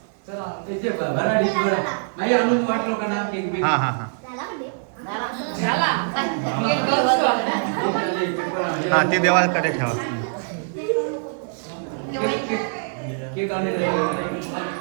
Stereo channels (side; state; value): left; silent; digital silence